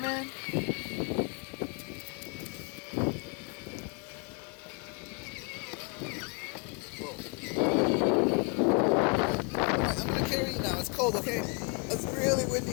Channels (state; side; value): quieter; right; 35.8 dB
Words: Whoa. Alright, I'm gonna carry you now. It's cold, okay? It's really windy